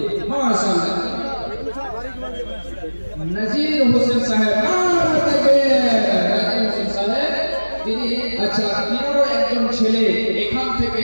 মাশাআল্লাহ। নাজির হোসেন সাহেব, নাজির হোসেন সাহেব তিনি, আচ্ছা, তিনারও একজন ছেলে এখান থেকে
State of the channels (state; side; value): inverted; both; correlation -1.00